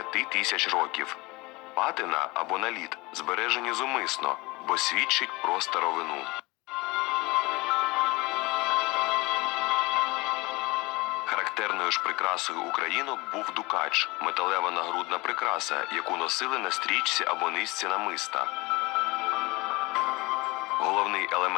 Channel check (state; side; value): quieter; right; 23.4 dB